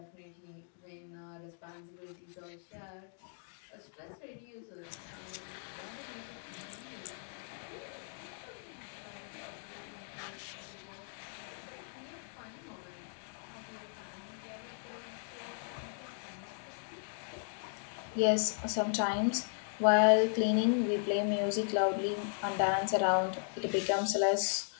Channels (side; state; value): right; silent; digital silence